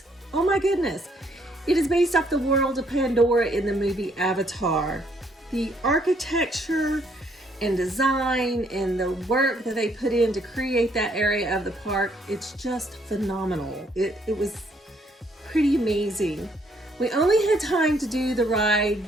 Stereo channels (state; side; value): normal; both; correlation 0.68